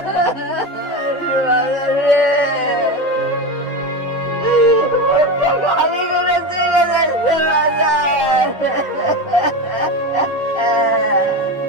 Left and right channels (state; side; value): normal; both; correlation 0.21